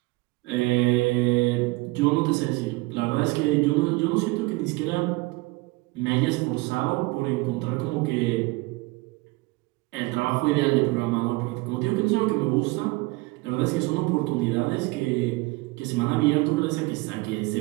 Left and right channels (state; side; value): quieter; left; 23.2 dB